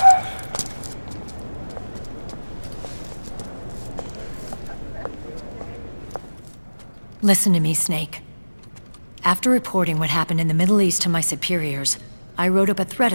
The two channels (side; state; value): both; inverted; correlation -1.00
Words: Listen to me, Snake. After reporting what happened in the Middle East to my superiors, I wrote up a threat